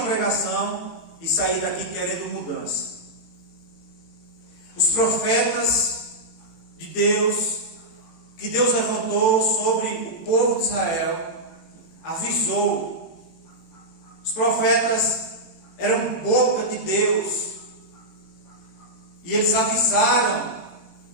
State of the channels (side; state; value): right; late; 18 ms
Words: pregação e sair daqui querendo mudança. Os profetas de Deus, que Deus levantou sobre o povo de Israel, avisou. Os profetas eram boca de Deus, e eles avisaram